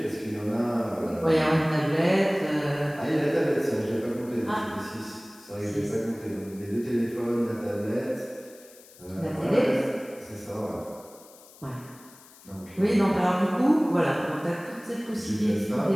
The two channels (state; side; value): noise; left; hiss, 23 dB below the sound